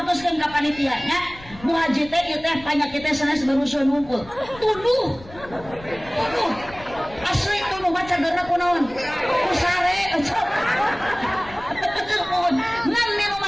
ka panitianya Bu Haji teh ieu teh panyakit teh sanes barusan ngumpul tuduh cagerna kunaon ku sare ngan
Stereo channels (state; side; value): noise; left; rumble, 19 dB below the sound